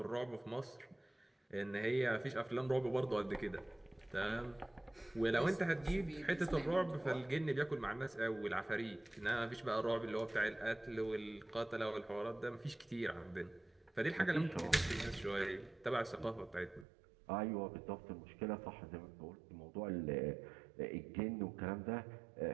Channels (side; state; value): left; drops out; at 16.9 s